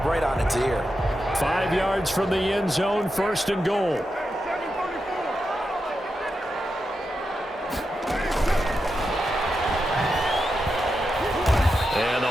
right on its ear. 5 yards from the end zone, first and goal.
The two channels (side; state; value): both; normal; correlation 0.88